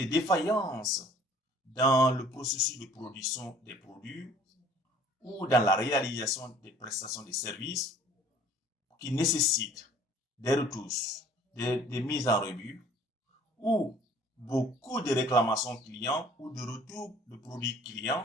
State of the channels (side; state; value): both; normal; correlation 0.54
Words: défaillances dans le processus de production des produits ou dans la réalisation des prestations de services qui nécessitent des retouches, des mises en revue ou beaucoup de réclamations clients ou de retours de produits